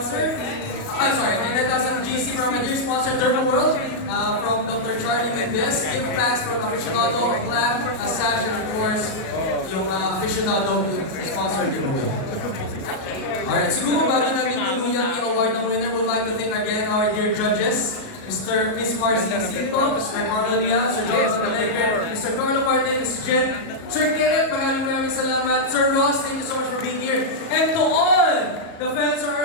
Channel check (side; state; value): right; late; 37 ms